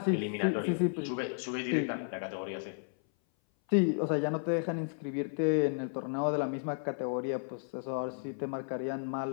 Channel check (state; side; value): silent; right; 56 dB below the other